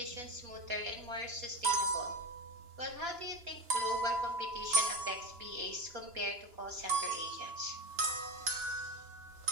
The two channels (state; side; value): late; left; 2.9 ms